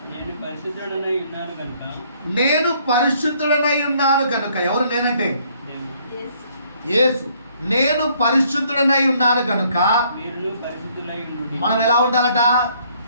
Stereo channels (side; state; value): both; inverted; correlation -0.65